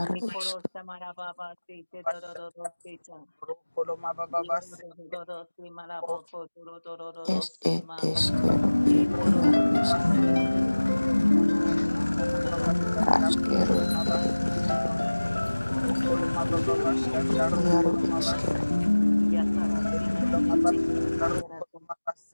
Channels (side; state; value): both; inverted; correlation -1.00